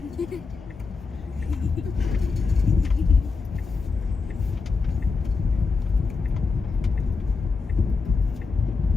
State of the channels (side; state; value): right; quieter; 4.6 dB